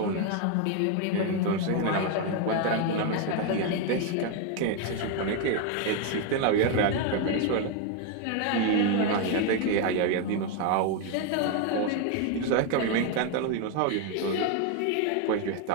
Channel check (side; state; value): both; different; correlation 0.01